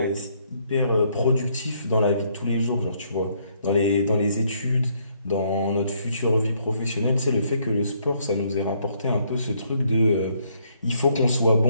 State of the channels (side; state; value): both; inverted; correlation -0.70